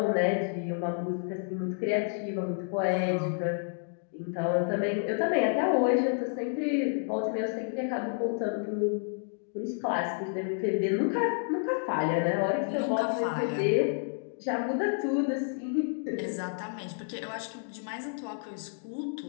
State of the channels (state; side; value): silent; right; 58 dB below the other